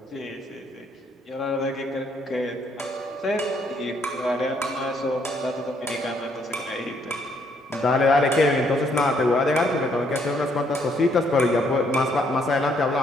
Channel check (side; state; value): both; normal; correlation 0.70